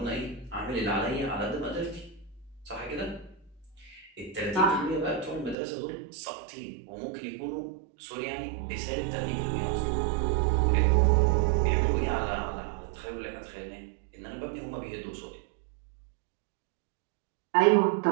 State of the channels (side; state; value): left; drops out; at 5.6 s